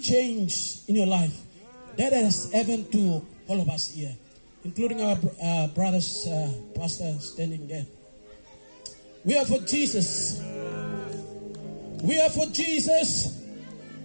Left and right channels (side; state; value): both; inverted; correlation -1.00